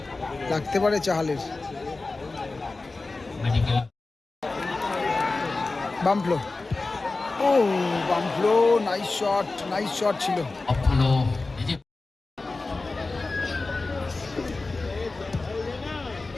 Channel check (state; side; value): quieter; right; 3.5 dB